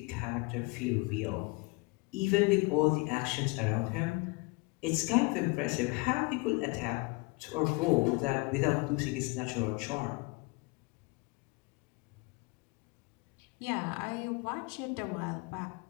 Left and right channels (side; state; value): right; quieter; 26.6 dB